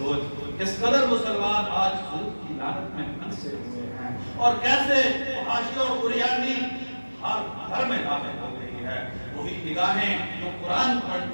کس قدر مسلمان آج سود کی لعنت میں پھنسے ہوئے ہیں اور کیسے فحاشی اور عریانی ہر گھر میں داخل ہو گئی ہے۔ وہی نگاہیں جو قرآن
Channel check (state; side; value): inverted; both; correlation -1.00